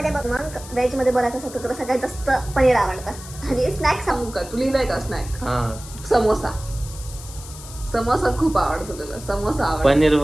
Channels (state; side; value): noise; left; hiss, 15 dB below the sound